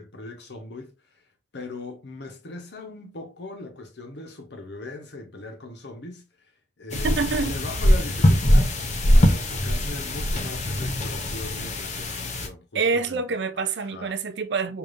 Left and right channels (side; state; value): both; normal; correlation 0.76